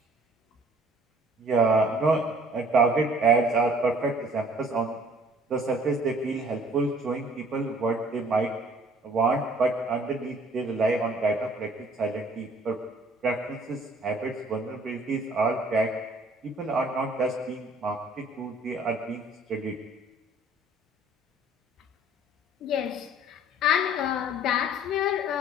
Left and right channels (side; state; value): both; normal; correlation 0.55